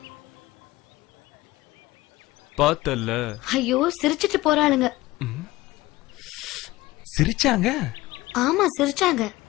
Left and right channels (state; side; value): quieter; right; 18.6 dB